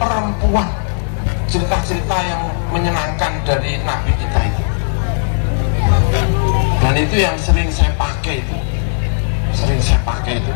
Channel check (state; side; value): silent; right; 56 dB below the other